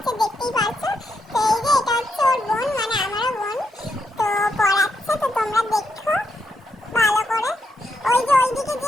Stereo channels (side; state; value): both; normal; correlation 0.81